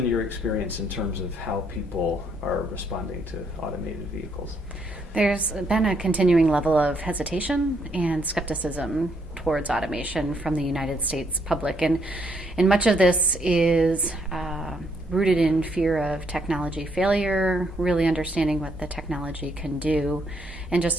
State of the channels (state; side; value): normal; both; correlation 0.71